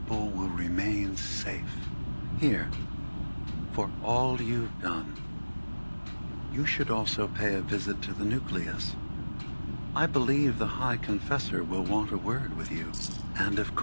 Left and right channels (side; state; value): both; inverted; correlation -1.00